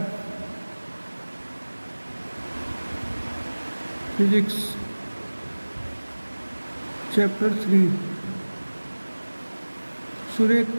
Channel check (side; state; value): both; inverted; correlation -1.00